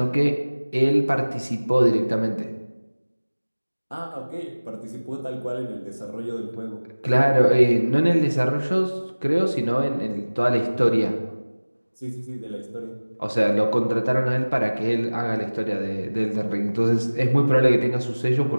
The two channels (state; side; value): inverted; both; correlation -1.00